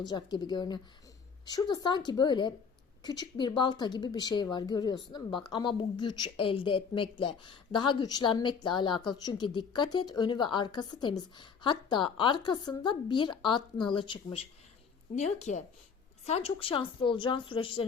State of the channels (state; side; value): quieter; right; 6.0 dB